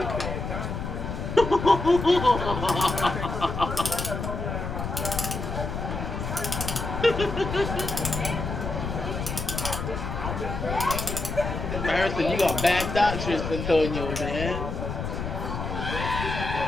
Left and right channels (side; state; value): left; noise; rumble, 4 dB below the sound